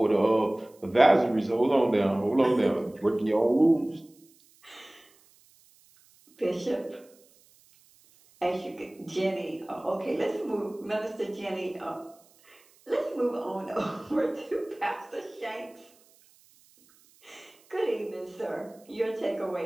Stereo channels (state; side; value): noise; right; hiss, 30 dB below the sound